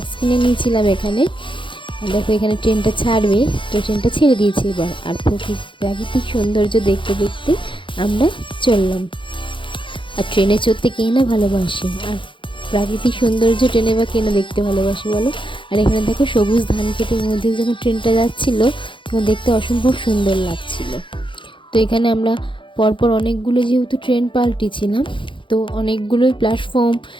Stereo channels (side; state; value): right; late; 0.24 ms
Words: কিনে নিয়েছিলাম এখানে। আর দেখো, এখানে ট্রেনটা ছাড়বে। তো ট্রেনটা ছেড়ে দিয়েছে এবার। আর প্রাকৃতিক সৌন্দর্য দেখতে দেখতে আমরা চললাম। আর ট্রেনে চড়তে কে না ভালোবাসে, আর প্রাকৃতিক সৌন্দর্য ট্রেনে বা কে না দেখতে ভালোবাসে বলো। আর এখানে দেখো, সবুজ ধান ক্ষেতের মধ্যে যখন ট্রেনটা যাচ্ছিল তখন দেখতে অসম্ভব সুন্দর লাগছিল। তো এখানে আমরা পরপর অনেকগুলো যেহেতু ট্রেন পাল্টিছিলাম, তো অনেকগুলোই প্ল্যাটফর্ম